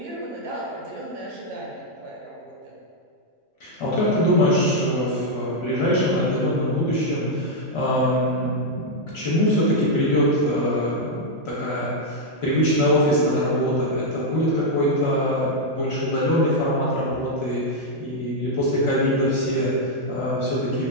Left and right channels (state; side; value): normal; both; correlation -0.02